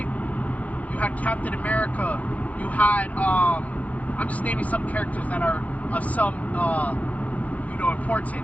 You had Captain America. You had, I'm just naming some characters that are of some,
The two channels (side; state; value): right; late; 0.071 ms